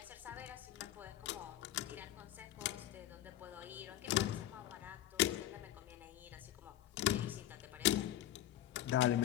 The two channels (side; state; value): right; quieter; 12.6 dB